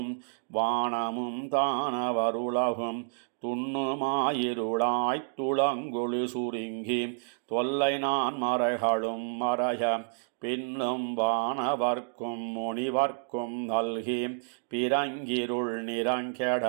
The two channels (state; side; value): silent; left; digital silence